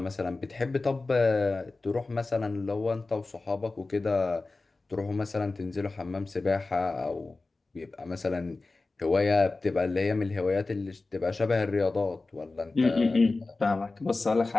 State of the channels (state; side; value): quieter; right; 3.4 dB